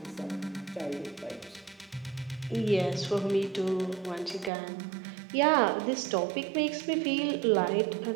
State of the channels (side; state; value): left; drops out; at 4.5 s